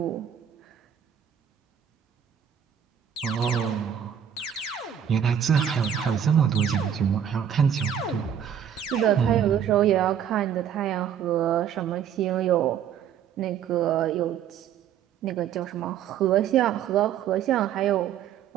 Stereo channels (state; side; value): quieter; left; 9.0 dB